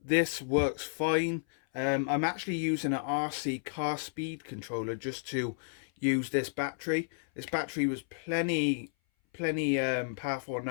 This works fine. I'm actually using an RC car speed controller just to use this battery. This battery was plenty powerful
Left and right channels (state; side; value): silent; right; 56 dB below the other